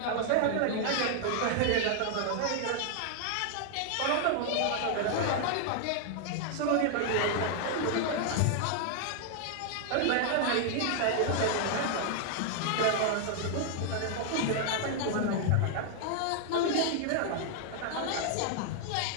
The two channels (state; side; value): different; both; correlation 0.00